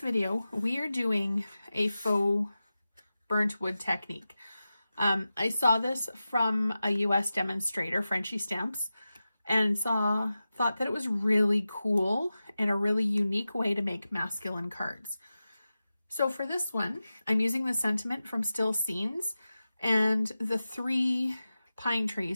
we are doing a faux burnt wood technique. I saw this from a US demonstrator, Frenchy Stamps, and thought that it was really cool and a really unique way to make masculine cards. So for this one, I'm using the sentiment from Still Scenes and the 3 pine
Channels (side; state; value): both; inverted; correlation -0.94